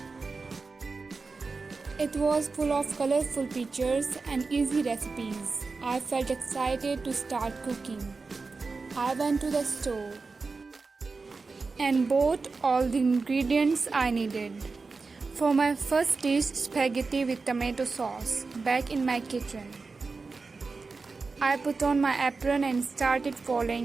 It was full of colorful pictures and easy recipes. I felt excited to start cooking. I went to the store and bought all the ingredients I needed for my first dish, spaghetti with tomato sauce, back in my kitchen. I put on my apron and started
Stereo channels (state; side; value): quieter; left; 4.2 dB